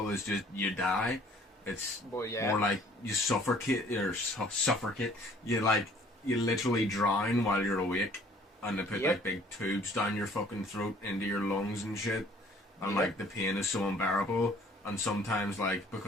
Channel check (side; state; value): both; normal; correlation 0.55